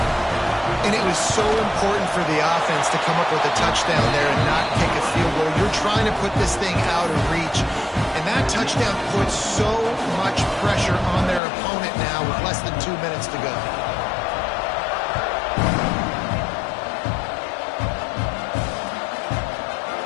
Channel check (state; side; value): drops out; right; at 11.4 s